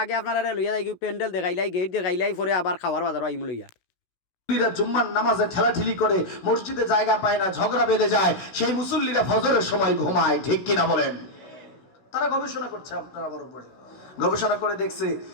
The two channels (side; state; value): right; late; 16 ms